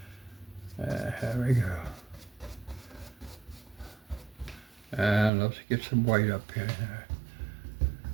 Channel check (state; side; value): drops out; left; at 5.3 s